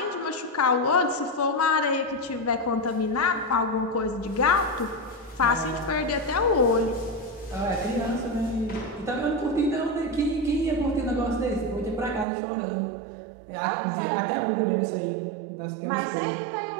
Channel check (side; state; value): left; drops out; at 12.2 s